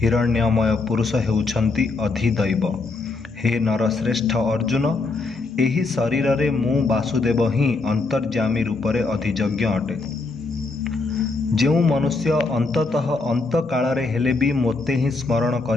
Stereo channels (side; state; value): right; quieter; 3.7 dB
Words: ପୁରୁଷ ହେଉଛନ୍ତି ଅଧିଦୈବ। ହେ ନରଶ୍ରେଷ୍ଠ ଅର୍ଜୁନ, ଏହି ଶରୀରରେ ମୁଁ ବାସୁଦେବ ହିଁ ଅନ୍ତର୍ଯ୍ୟାମୀ ରୂପରେ ଅଧିଯଜ୍ଞ ଅଟେ। ଯେଉଁ ମନୁଷ୍ୟ ଅନ୍ତତଃ ଅନ୍ତକାଳରେ ହେଲେ ବି ମୋତେ ହିଁ ସ୍ମରଣ